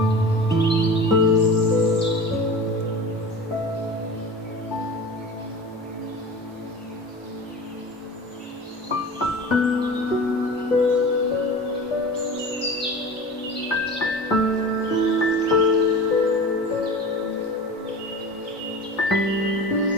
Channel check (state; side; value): normal; both; correlation 0.35